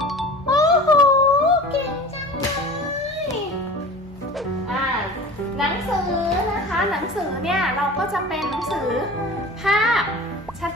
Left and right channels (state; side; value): normal; both; correlation 0.37